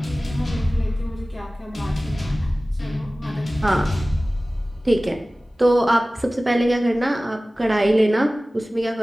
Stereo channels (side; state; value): both; normal; correlation 0.97